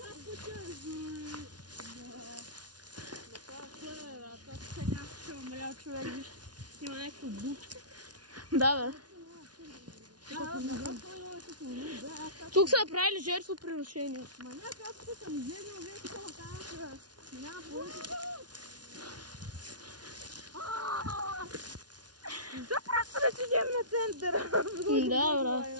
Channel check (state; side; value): late; left; 0.69 ms